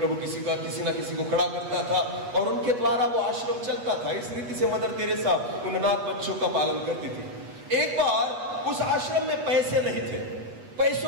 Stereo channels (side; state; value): left; late; 8.3 ms